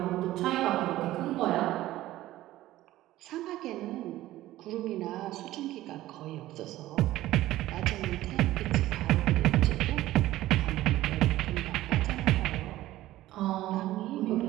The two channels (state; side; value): quieter; left; 15.5 dB